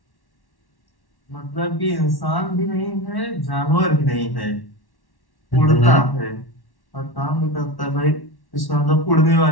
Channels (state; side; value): late; right; 1.1 ms